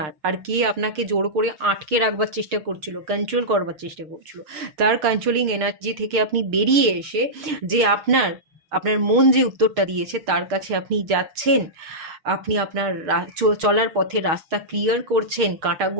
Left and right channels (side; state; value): left; late; 6.6 ms